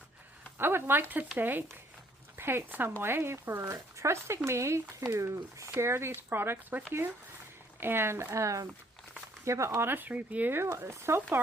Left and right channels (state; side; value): normal; both; correlation 0.63